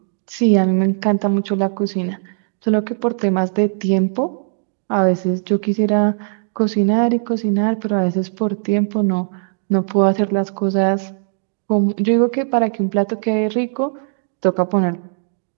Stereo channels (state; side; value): silent; left; digital silence